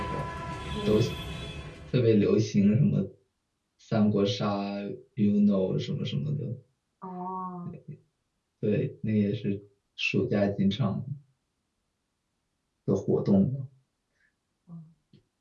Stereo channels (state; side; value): identical; both; correlation 1.00